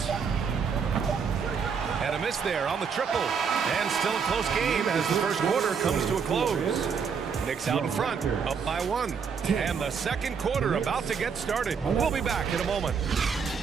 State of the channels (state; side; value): quieter; left; 6.2 dB